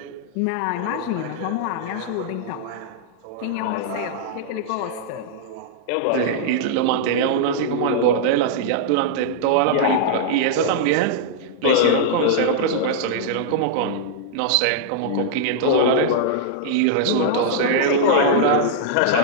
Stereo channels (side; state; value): both; different; correlation -0.02